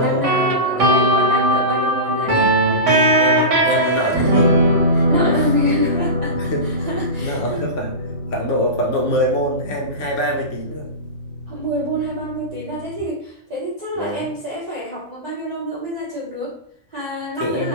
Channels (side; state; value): both; normal; correlation -0.20